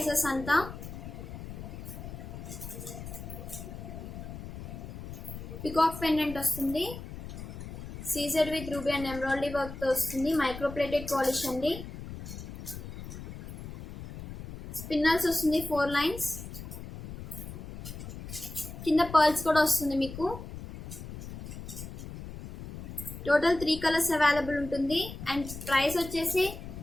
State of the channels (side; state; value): left; noise; rumble, 11 dB below the sound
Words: అంతా. పికాక్ పెండెంట్ వస్తుంది, CZ with ruby and embroidery work తో వస్తుంది. మైక్రో ప్లేటెడ్ పాలిష్ అండి. స్పిన్నల్స్ వస్తుంది, 4 లైన్స్. కింద పర్ల్స్ కూడా వస్తుంది మీకు. టోటల్ 3 కలర్స్ అవైలబుల్ ఉంటుంది అండ్ ప్రైస్ వచ్చేసి